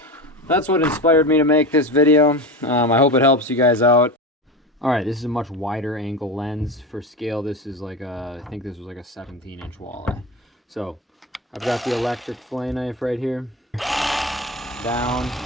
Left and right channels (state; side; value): normal; both; correlation 0.24